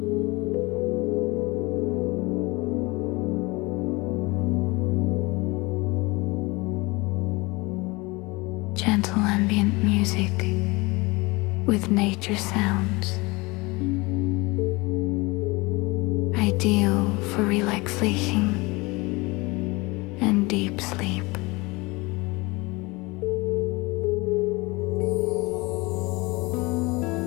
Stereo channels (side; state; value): right; quieter; 24.4 dB